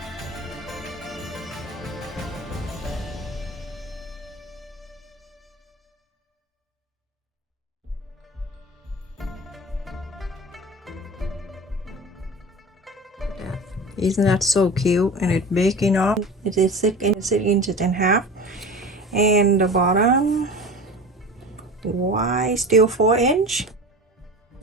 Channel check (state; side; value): normal; both; correlation 0.35